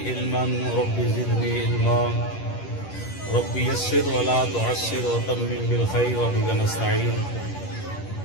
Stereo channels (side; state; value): right; late; 10 ms